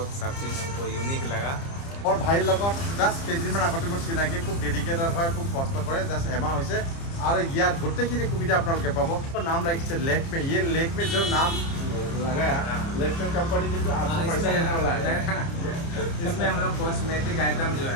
सब चीज़ हमको यूनिक लगा। মোৰ ভাইৰ লগত জাষ্ট কেইদিনমান আগতে মোৰ চিনাকি, খুব ডেডিকেটেড হয়, খুব কষ্ট কৰে। জাষ্ট এমাহ হৈছে আৰু ইয়াত গোটেইখিনি সুবিধা আপোনালোকে পাব। নাম ৰাখিছে लेक्मे। ये लेक्मे जो नाम लगाया, लेक्मे कंपनी की आपको पैसा देने वाला है। इसमें हम लोग कॉस्मेटिक आइटम जो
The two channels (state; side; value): late; right; 30 ms